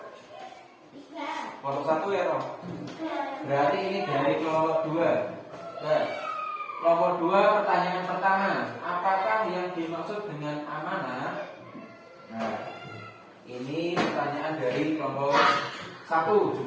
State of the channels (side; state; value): both; identical; correlation 1.00